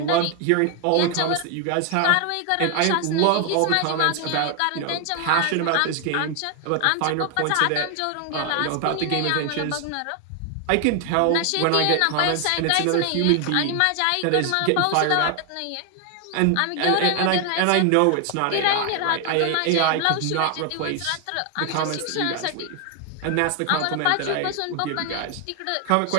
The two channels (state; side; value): different; both; correlation 0.00